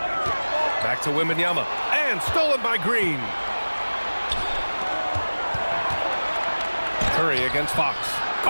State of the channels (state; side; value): inverted; both; correlation -1.00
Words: Back to Wembanyama. And stolen by Green. Curry against Fox.